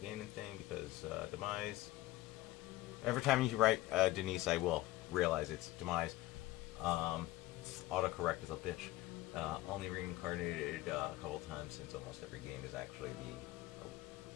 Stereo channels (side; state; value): right; quieter; 17.2 dB